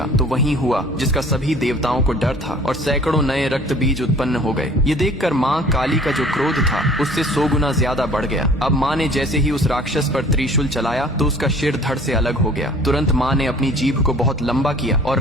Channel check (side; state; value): both; normal; correlation 0.50